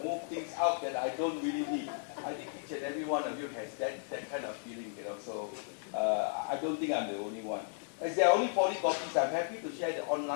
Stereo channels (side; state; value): right; silent; digital silence